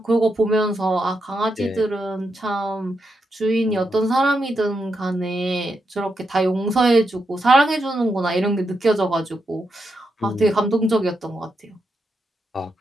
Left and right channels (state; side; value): normal; both; correlation 0.84